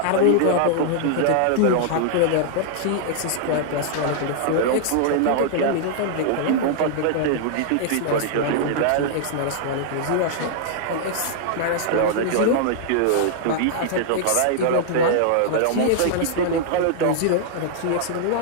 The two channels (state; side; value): different; both; correlation -0.01